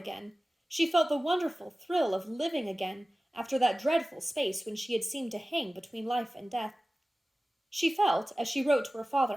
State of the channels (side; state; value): both; normal; correlation 0.97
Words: She felt the wonderful thrill of living again after that dreadful space when she had seemed to hang between life and death. She felt, as she wrote to her